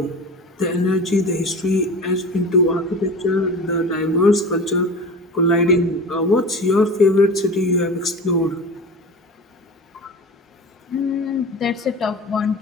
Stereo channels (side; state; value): both; normal; correlation 0.34